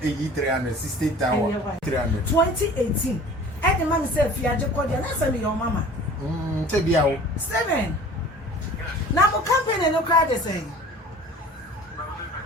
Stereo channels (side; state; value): both; normal; correlation 0.45